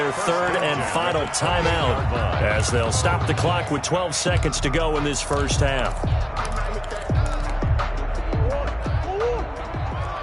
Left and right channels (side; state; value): both; identical; correlation 1.00